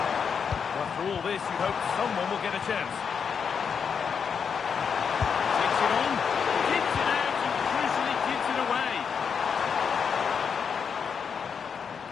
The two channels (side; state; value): right; quieter; 6.6 dB